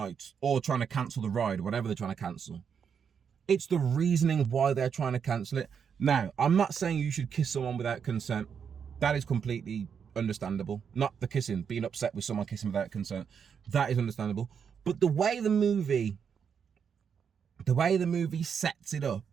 or trying to cancel the ride, whatever they're trying to cancel. It's the reasoning why they're trying to cancel it. Now, I'm not saying you should kiss someone without consent. That is completely understandable. Not the kissing, being upset with someone kissing without consent. That is understandable. But the way the movie sets it up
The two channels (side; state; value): left; quieter; 7.1 dB